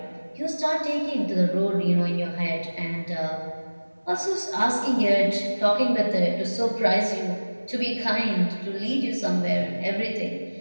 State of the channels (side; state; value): both; inverted; correlation -1.00